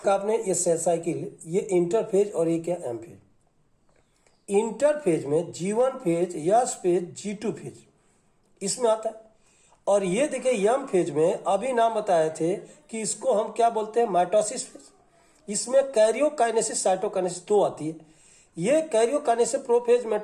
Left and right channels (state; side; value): identical; both; correlation 1.00